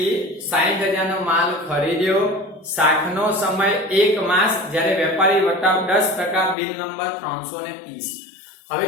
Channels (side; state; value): right; drops out; at 6.6 s